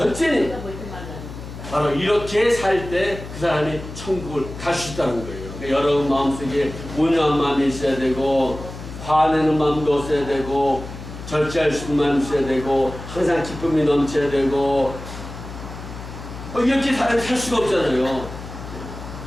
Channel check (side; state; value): left; noise; hum, 11 dB below the sound